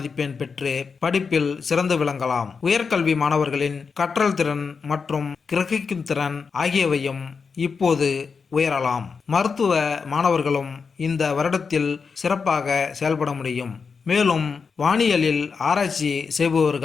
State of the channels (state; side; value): quieter; right; 5.4 dB